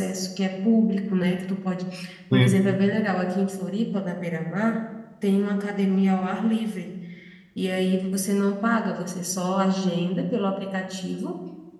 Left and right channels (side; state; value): both; identical; correlation 1.00